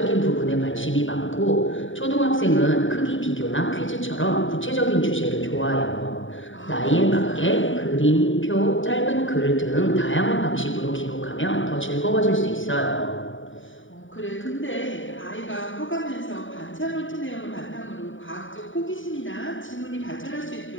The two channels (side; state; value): right; late; 0.57 ms